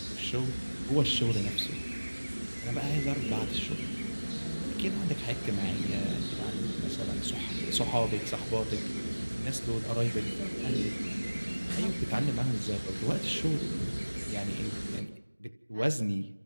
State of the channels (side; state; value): both; inverted; correlation -1.00